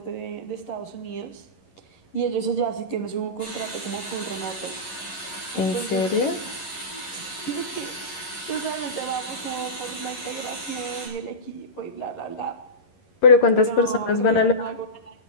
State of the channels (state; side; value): late; right; 11 ms